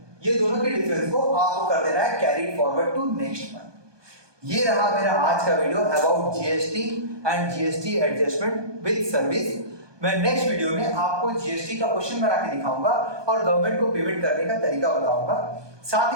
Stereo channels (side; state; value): left; late; 1.2 ms